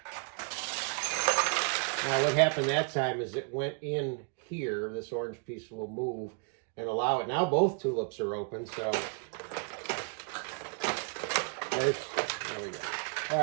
Now what happened that time is it went in here. This orange piece will move and allow it. Now both tulips are open, so there we go. Oh,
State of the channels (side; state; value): left; quieter; 39.4 dB